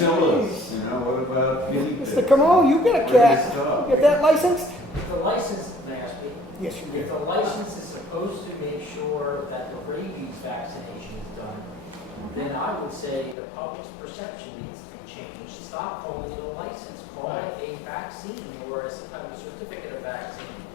you know, what about guinea pigs? Mr. Comeau, you got a Where do cat. they stop? You get that licensed? If the license, may I speak? Yes, you If do. the license is supposed to make sure that the rabies vaccination is done, then I would say the public's perception needs to be changed stop calling it a license, call it a vaccine or a certificate of vaccine,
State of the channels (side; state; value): right; drops out; at 13.4 s